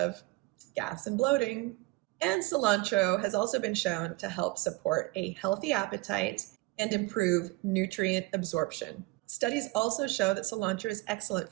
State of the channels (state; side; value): quieter; left; 22.1 dB